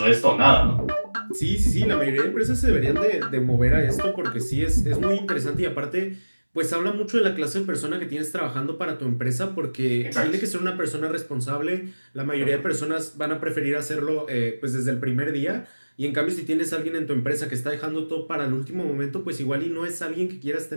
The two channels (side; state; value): both; inverted; correlation -1.00